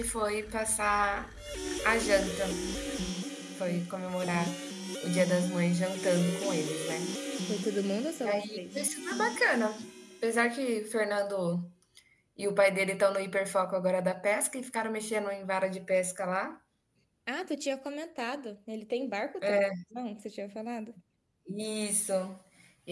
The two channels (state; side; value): identical; both; correlation 1.00